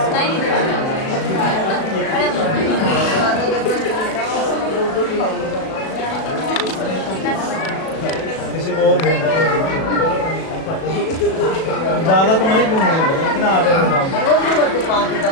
किसी को और ज़्यादा तो नहीं घूमेंगे इतना आटे का काम।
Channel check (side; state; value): right; late; 37 ms